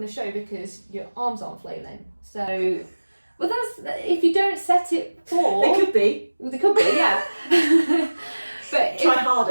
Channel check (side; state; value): both; inverted; correlation -1.00